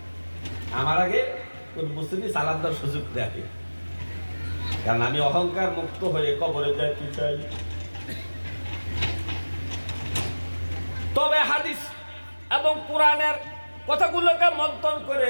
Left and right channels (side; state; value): both; inverted; correlation -1.00